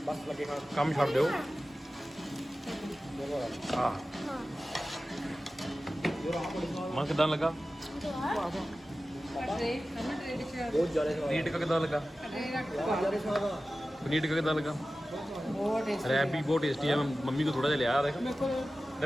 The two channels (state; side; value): normal; both; correlation 0.95